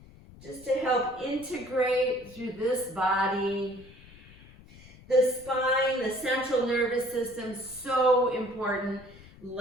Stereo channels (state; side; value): noise; left; rumble, 21 dB below the sound